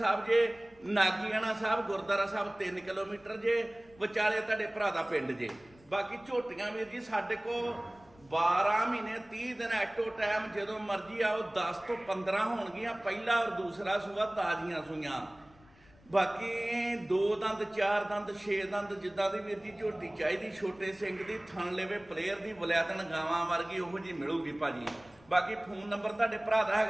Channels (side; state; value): left; noise; rumble, 27 dB below the sound